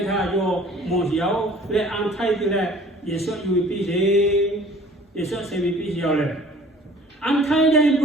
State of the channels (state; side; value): normal; both; correlation 0.50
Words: your Mosiao, let untied that. Yes, you will be there. Yes, I will be here. Untie them and